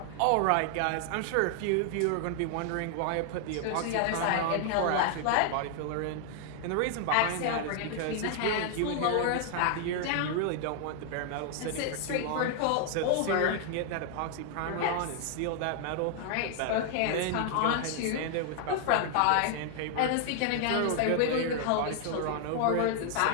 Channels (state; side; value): different; both; correlation 0.00